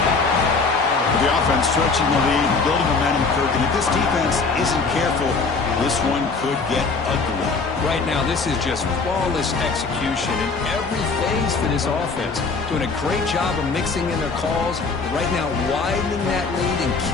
The offense stretching the lead, building momentum, Kirk, and if this defense isn't careful, this one could get ugly. Right now, this is just flawless execution in every phase for this offense. Doing a great job of mixing in their calls, but right now widening that lead and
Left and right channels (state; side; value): quieter; right; 4.4 dB